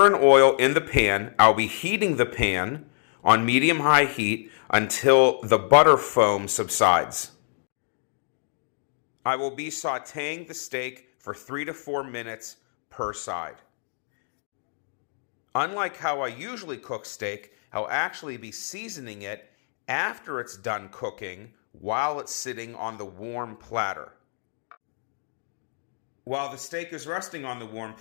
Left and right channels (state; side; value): silent; right; digital silence